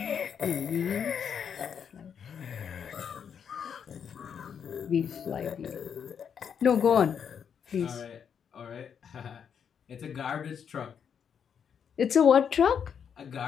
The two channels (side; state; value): right; quieter; 7.5 dB